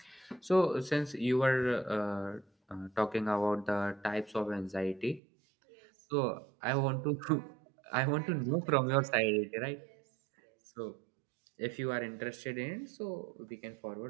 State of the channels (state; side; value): drops out; left; at 5.2 s